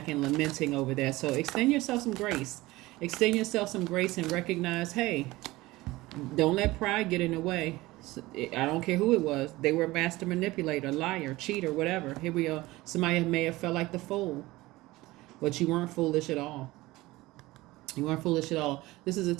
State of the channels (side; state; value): left; quieter; 19.3 dB